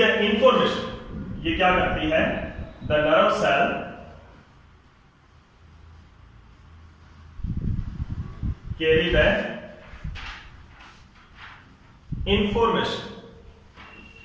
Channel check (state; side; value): identical; both; correlation 1.00